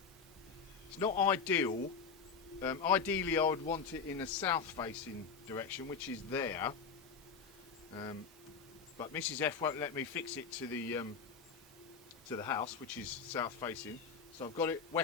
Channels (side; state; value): right; quieter; 5.7 dB